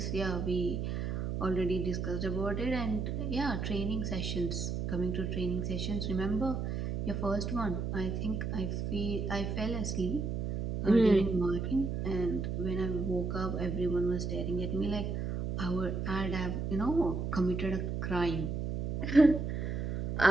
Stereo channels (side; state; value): right; noise; hum, 2 dB below the sound